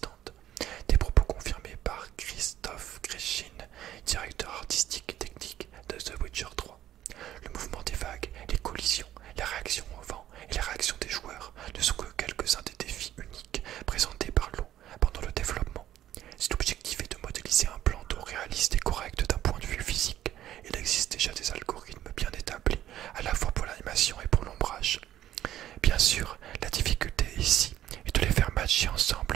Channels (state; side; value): quieter; left; 12.5 dB